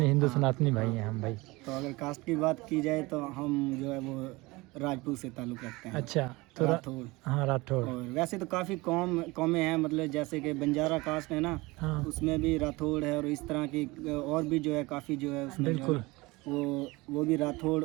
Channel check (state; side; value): quieter; left; 22.6 dB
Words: हिंदू सनातनी भाई हैं हम भाई। तो अगर कास्ट की बात की जाए तो हम जो है वो राजपूत से ताल्लुक़ रखते हैं। अच्छा तो राठौड़। हाँ राठौड़। और वैसे तो काफ़ी कौमें हैं, मतलब जैसे कि बंजारा कास्ट है ना, हाँ उसमें भी राठौड़ है और इस तरह की और भी जो है काफ़ी जो है उसमें जो है बिल्कुल वो भी राठौड़